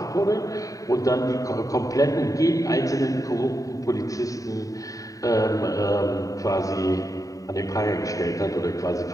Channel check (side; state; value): right; late; 0.16 ms